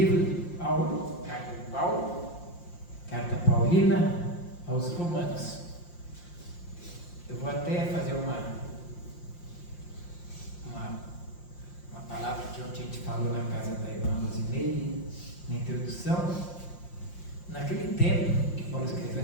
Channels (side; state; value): right; late; 5.7 ms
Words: de Paulo, carta de Paulo, carta paulina aos Romanos. Eu vou até fazer uma palavra que ontem a gente falou na casa da irmã Rosineire, na introdução. Naquele tempo que Paulo escreveu